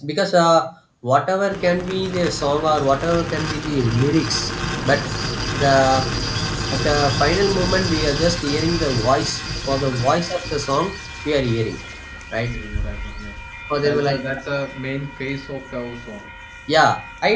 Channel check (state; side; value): identical; both; correlation 1.00